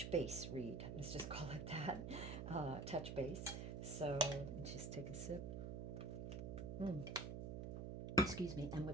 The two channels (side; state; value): right; noise; hum, 4 dB below the sound